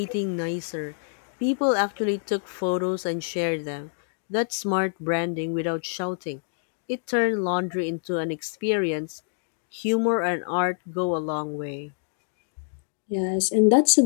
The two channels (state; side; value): silent; right; digital silence